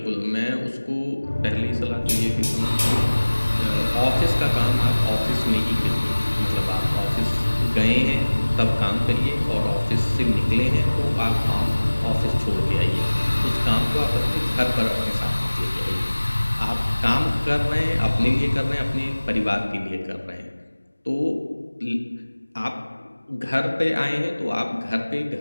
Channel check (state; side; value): inverted; both; correlation -1.00